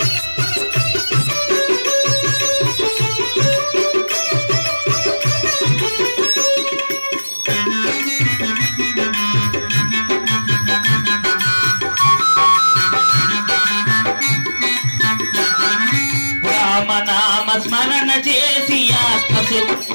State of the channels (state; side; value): inverted; both; correlation -1.00